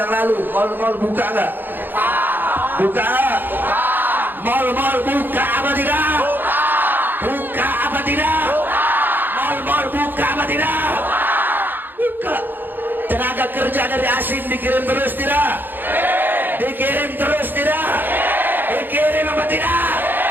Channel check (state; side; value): late; left; 0.092 ms